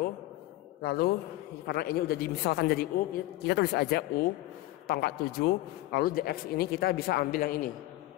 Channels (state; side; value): quieter; right; 17.0 dB